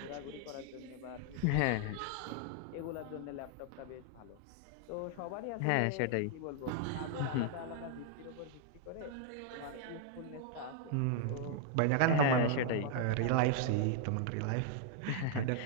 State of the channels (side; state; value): both; different; correlation 0.00